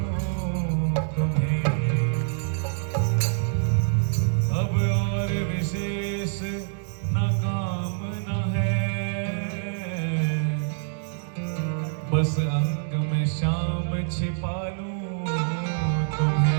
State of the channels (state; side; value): silent; left; digital silence